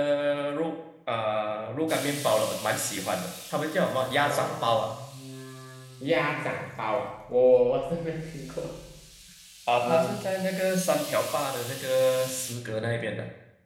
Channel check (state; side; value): identical; both; correlation 1.00